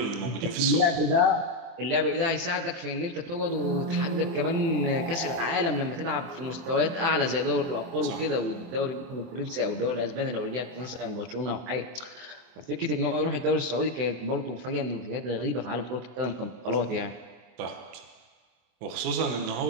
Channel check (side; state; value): left; late; 24 ms